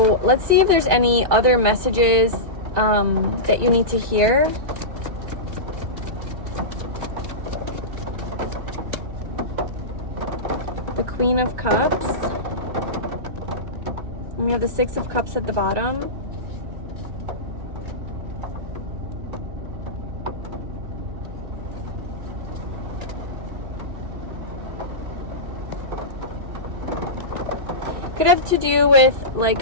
let's see if there's any other messages that you need to hear. The Queen of Cups. And we have the Six of Cups at the bottom. Could have to do with like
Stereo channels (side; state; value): left; late; 2.5 ms